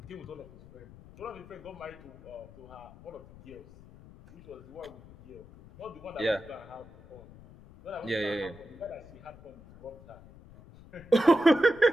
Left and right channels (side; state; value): left; noise; rumble, 19 dB below the sound